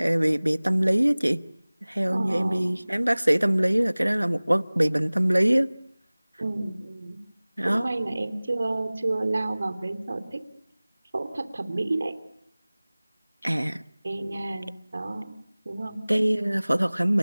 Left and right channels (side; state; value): both; inverted; correlation -0.99